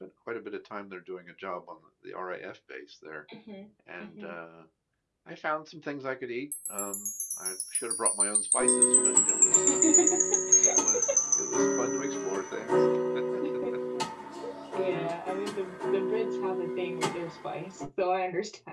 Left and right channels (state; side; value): identical; both; correlation 1.00